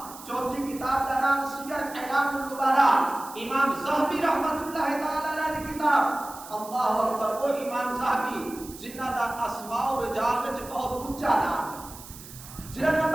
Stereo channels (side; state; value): right; noise; hiss, 16 dB below the sound